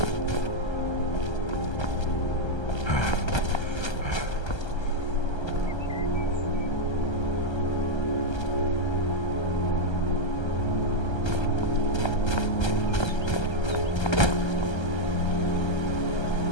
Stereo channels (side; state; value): right; late; 1.3 ms